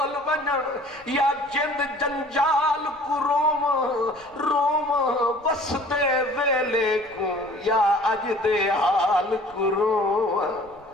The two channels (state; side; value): noise; right; rumble, 28 dB below the sound